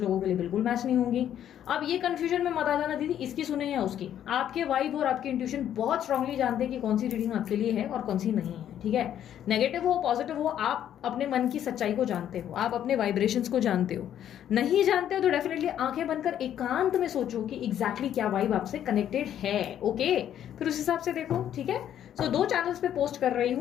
लोगों के लिए बिल्कुल मैच नहीं होंगी। अब ये कंफ्यूजन में मत आ जाना दीदी इसकी सुने या उसकी। आपके वाइब और आपकी इंट्यूशन बहुत स्ट्रांगली जानते हैं कि कौन सी रीडिंग आपके लिए है और कौन सी नहीं है, ठीक है। नेगेटिव हो पॉजिटिव हो, आप अपने मन की सच्चाई को जानते हो, आप अपने वाइब्रेशंस को जानते हो। नहीं जानते हो तो डेफिनेटली आंखें बंद कर एकांत में सोचो कि एग्जैक्टली क्या वाइब आपसे कनेक्टेड है, ओके। फिर उस हिसाब से देखो, ठीक है। सो 2 चैनल्स पे पोस्ट कर रही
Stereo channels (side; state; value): right; quieter; 10.4 dB